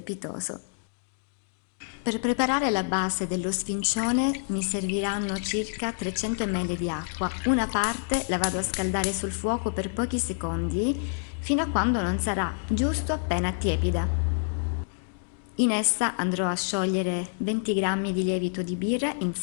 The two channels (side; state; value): right; silent; digital silence